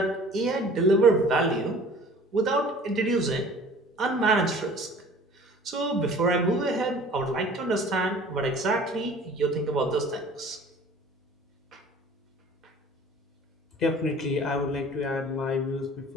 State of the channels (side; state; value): both; normal; correlation 0.47